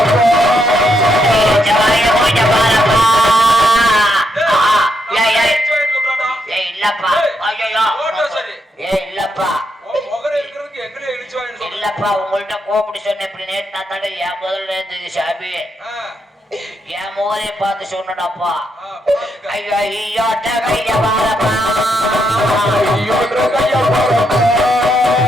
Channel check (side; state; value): both; normal; correlation 0.79